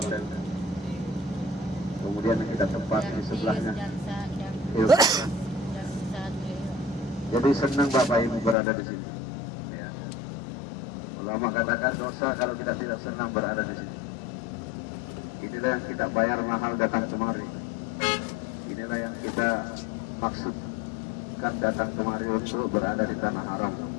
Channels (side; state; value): right; drops out; at 8.6 s